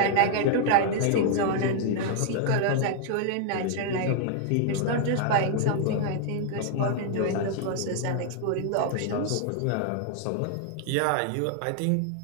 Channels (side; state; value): both; different; correlation -0.01